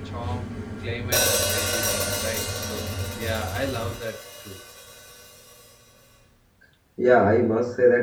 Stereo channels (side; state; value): both; identical; correlation 1.00